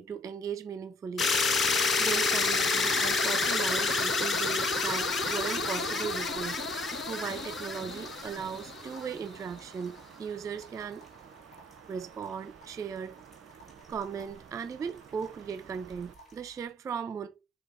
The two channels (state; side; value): normal; both; correlation 0.62